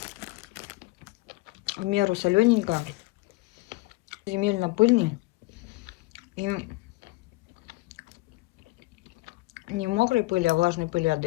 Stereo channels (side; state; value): right; quieter; 21.8 dB